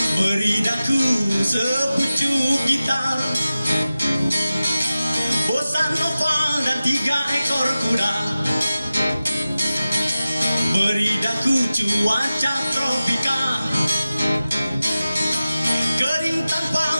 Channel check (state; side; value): inverted; both; correlation -0.95